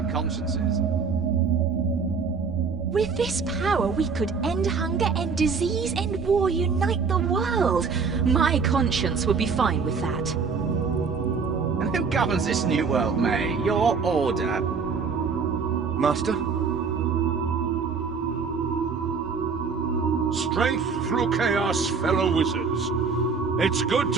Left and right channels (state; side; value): quieter; left; 5.3 dB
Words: consciences. With this power, we could end hunger, end disease, end war, unite the world. My conscience would be fine with that. And who governs this new world, May? Your order? Master? Strength through chaos, fellow wizards. It's good